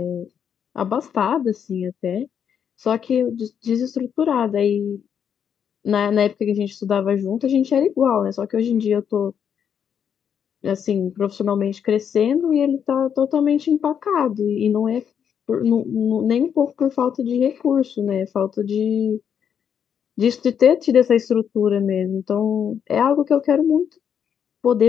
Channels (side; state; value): right; quieter; 8.1 dB